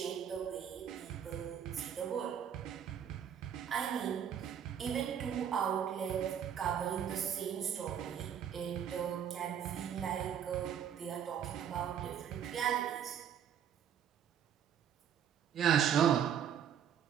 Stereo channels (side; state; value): left; quieter; 8.8 dB